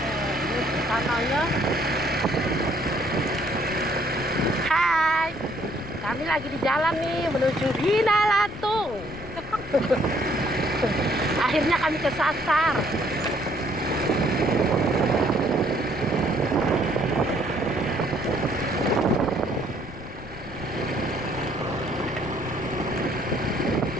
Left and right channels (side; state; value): left; noise; rumble, 15 dB below the sound